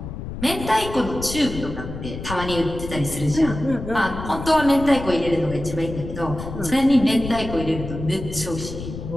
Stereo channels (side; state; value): left; noise; rumble, 9 dB below the sound